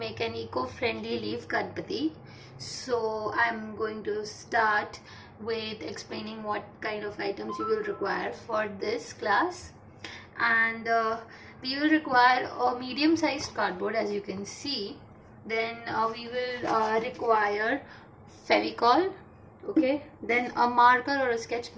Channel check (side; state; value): both; identical; correlation 1.00